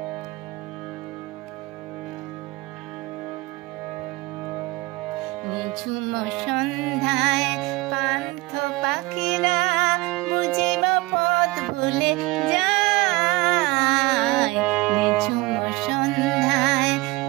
নিঝুম সন্ধ্যায় পান্থ পাখিরা বুঝিব পথ ভুলে যায়। নিঝুম সন্ধ্যায়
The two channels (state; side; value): quieter; left; 21.9 dB